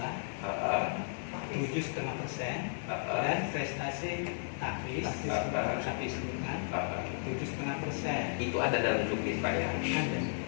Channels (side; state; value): right; silent; digital silence